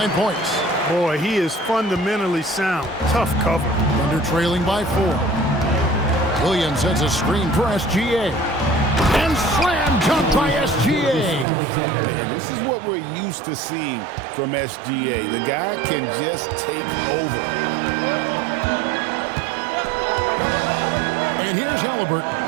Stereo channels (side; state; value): left; drops out; at 11.5 s